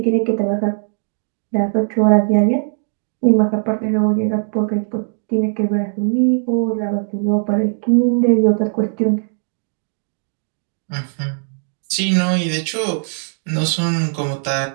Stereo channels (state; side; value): silent; left; 62 dB below the other